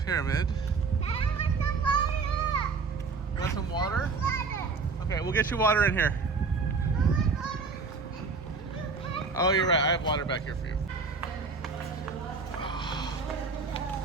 pyramid. You want some water? Okay, we'll get you water in here. Oh, you're right. I have water back here for you.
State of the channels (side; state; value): left; quieter; 4.6 dB